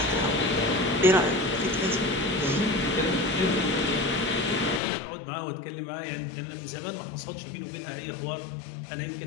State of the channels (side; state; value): right; drops out; at 4.8 s